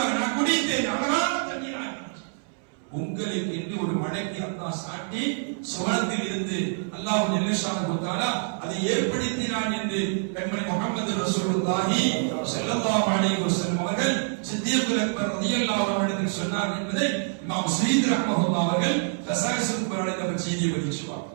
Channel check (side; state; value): left; silent; 61 dB below the other